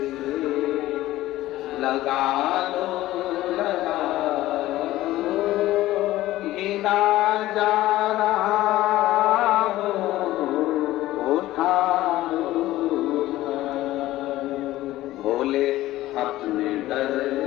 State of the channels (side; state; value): right; quieter; 15.9 dB